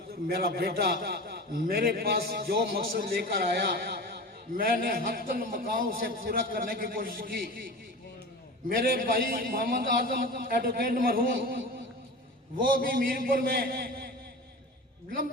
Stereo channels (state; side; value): normal; both; correlation 0.33